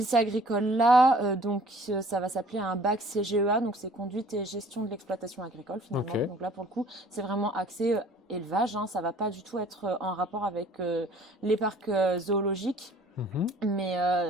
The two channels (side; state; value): both; normal; correlation 0.53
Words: agricole-là, ça va s'appeler un bac CGEA, donc c'est conduite et gestion de l'exploitation agricole finalement. Ok. Donc là pour le coup, c'est vraiment axé élevage, hein, ça va pas du tout être en rapport avec les parcs zoologiques. Mhm.